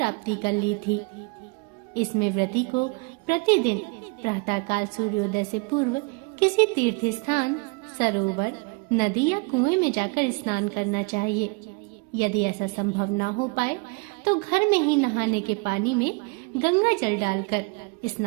कर ली थी। इसमें व्रती को प्रतिदिन प्रातःकाल सूर्योदय से पूर्व किसी तीर्थ स्थान, सरोवर, नदी या कुएं में जाकर स्नान करना चाहिए। यदि ऐसा संभव ना हो पाए तो घर में ही नहाने के पानी में गंगा जल डालकर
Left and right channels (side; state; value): left; quieter; 30.9 dB